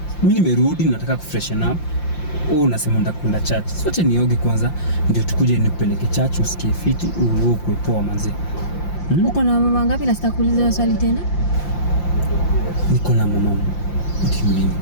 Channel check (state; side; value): late; right; 5.8 ms